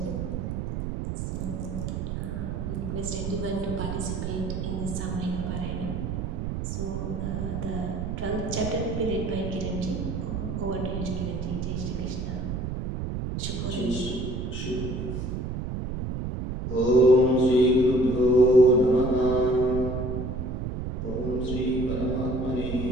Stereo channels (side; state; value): right; noise; rumble, 4 dB below the sound